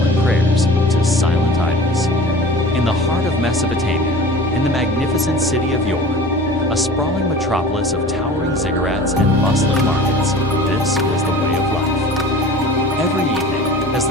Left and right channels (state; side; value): normal; both; correlation 0.40